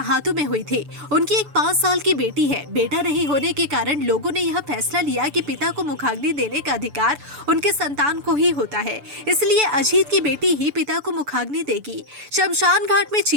में हुई थी। उनकी एक 5 साल की बेटी है। बेटा नहीं होने के कारण लोगों ने यह फैसला लिया कि पिता को मुखाग्नि देने का अधिकार उनके संतान को ही होता है, इसलिए अजीत की बेटी ही पिता को मुखाग्नि देगी। शमशान घाट में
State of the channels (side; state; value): left; late; 6.9 ms